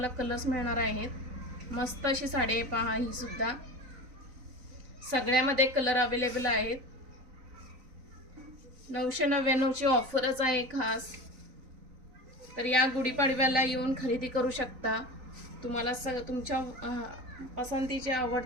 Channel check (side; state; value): left; late; 3.9 ms